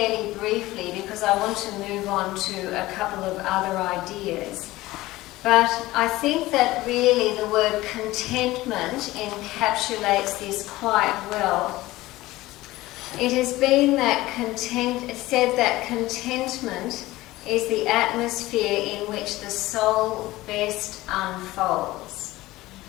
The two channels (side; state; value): right; quieter; 18.0 dB